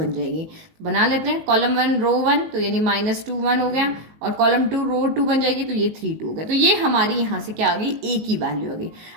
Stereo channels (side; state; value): left; late; 19 ms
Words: जाएगी। बना लेते हैं, कॉलम 1 रो 1 तो यानी -2 1 हो गया, और कॉलम 2 रो 2 बन जाएगी तो ये 3 2 हो गया। तो ये हमारी यहाँ से क्या आ गई, ए की वैल्यू आ गई।